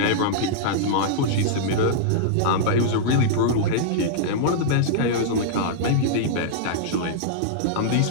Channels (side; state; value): both; different; correlation -0.02